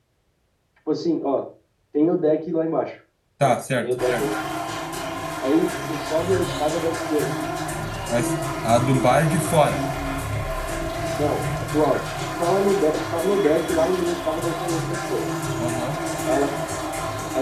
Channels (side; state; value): both; identical; correlation 1.00